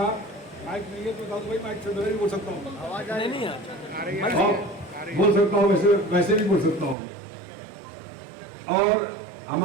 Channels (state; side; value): drops out; left; at 7.0 s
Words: माइक नहीं है तो बता दो भाई, माइक से नहीं बोल सकता हूँ, आवाज नहीं है, बोल सकता हूँ, वैसे भी बोल सकता हूँ। और